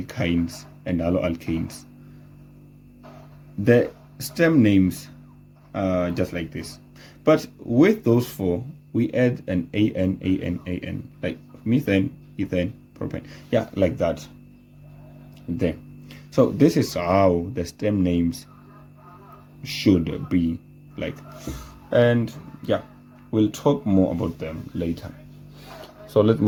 and alloalkanes, the stem names are just like this. But with those 4, we add an an, like methane, ethane, propane. Yeah, like that there. So this is how the stem names should be like. And yeah, we'll talk more about them later. So let's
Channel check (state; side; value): identical; both; correlation 1.00